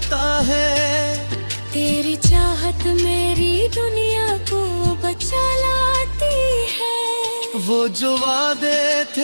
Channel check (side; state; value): both; inverted; correlation -1.00